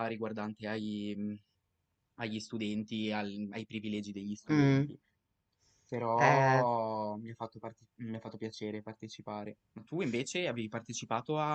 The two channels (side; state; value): both; identical; correlation 1.00